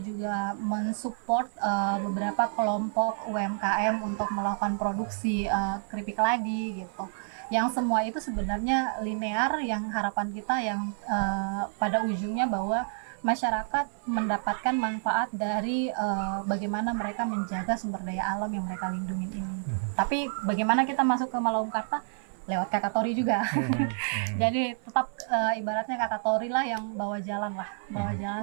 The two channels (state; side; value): silent; left; 59 dB below the other